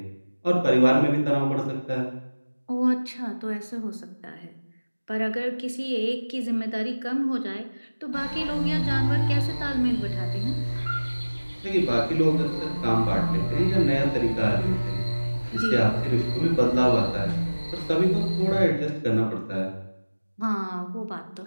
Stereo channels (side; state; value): both; inverted; correlation -1.00